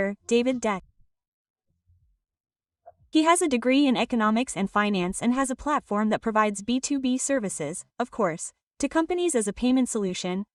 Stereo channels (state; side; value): identical; both; correlation 1.00